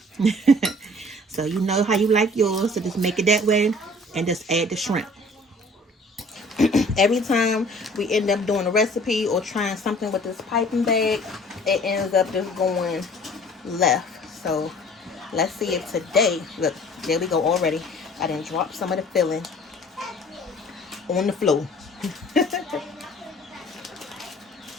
So you know how you like yours, so just make it that way and just add the shrimp. Every time we end up doing a recipe or trying something with this piping bag, it ends up just going left. So let's see if today, look, there we go already. I didn't drop some of the filling on the floor.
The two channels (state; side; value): normal; both; correlation 0.51